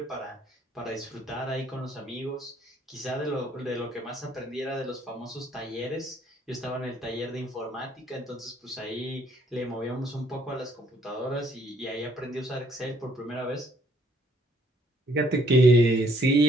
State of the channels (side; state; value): both; normal; correlation 0.65